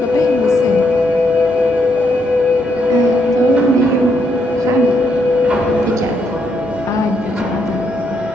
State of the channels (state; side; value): normal; both; correlation 0.76